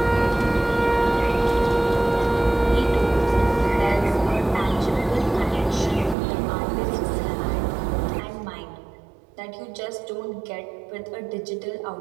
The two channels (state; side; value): drops out; left; at 6.2 s